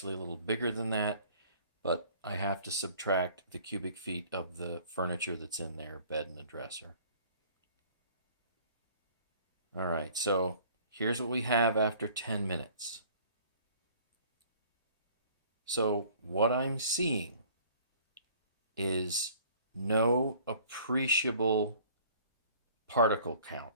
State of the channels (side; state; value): both; inverted; correlation -0.53